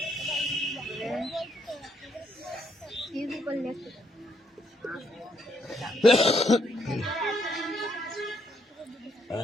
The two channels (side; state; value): both; normal; correlation 0.74